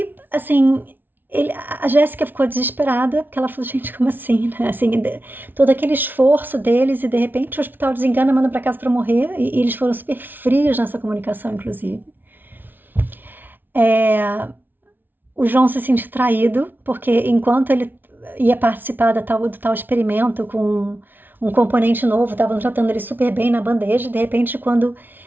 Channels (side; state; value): left; late; 0.092 ms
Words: assim, a Jéssica ficou desesperada, porque ela falou, gente, como assim? Né? Assim, todo aquele esforço deles e de repente o hospital desengana, manda para casa para morrer, e eles foram super frios nessa comunicação, inclusive. O João se sentiu traído, porque enquanto ele ia participar do tal experimento com um componente novo, estavam tratando ele super bem na bandeja, de repente, quando